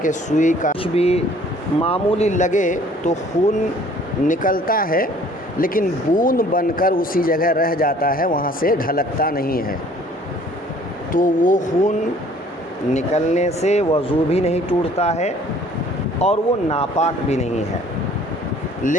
کہ سوئی کا کچھ بھی معمولی لگے تو خون نکلتا ہے لیکن بوند بن کر اسی جگہ رہ جاتا ہے، وہاں سے ڈھلکتا نہیں ہے، تو وہ خون نکلنے سے وضو بھی نہیں ٹوٹتا ہے اور وہ ناپاک بھی نہیں ہے۔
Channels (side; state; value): both; normal; correlation 0.55